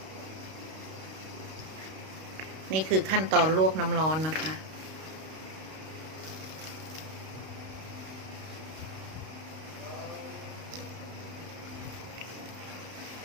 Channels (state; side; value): late; left; 32 ms